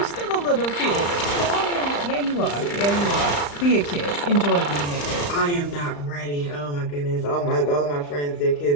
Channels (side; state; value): right; late; 35 ms